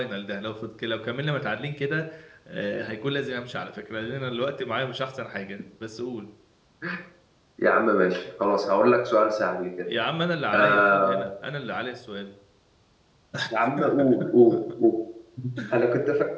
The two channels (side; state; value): both; identical; correlation 1.00